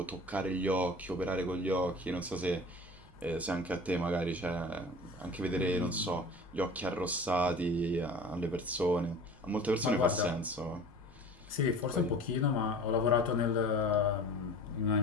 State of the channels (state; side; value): noise; right; rumble, 24 dB below the sound